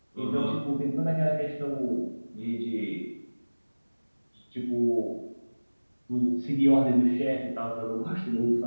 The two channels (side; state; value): both; inverted; correlation -1.00